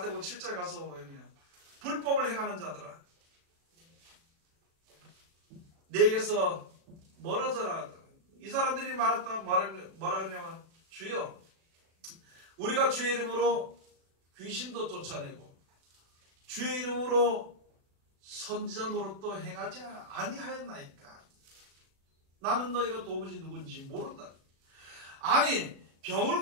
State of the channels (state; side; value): late; left; 36 ms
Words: 7장 가서 보면요, 불법을 행하는 자들아, 내게서 멀어져라. 이 사람들이 뭐라 그러냐면, 주여, 우리가 주의 이름으로 귀신도 쫓아내고 주의 이름으로 선지자 노릇도 행하지 아니하였나이까. 나는 너희가 도무지 누군지 모른다. 아니, 병을